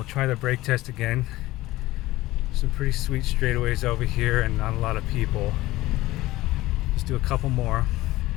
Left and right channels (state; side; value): quieter; right; 17.7 dB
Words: try the brake test again. Some pretty sweet straightaways over here and not a lot of people. Let's do a couple more.